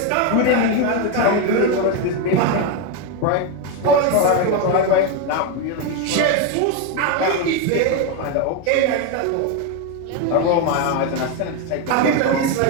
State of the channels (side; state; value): both; different; correlation 0.02